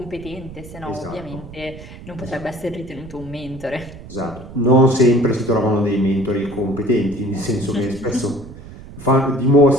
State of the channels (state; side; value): noise; right; rumble, 15 dB below the sound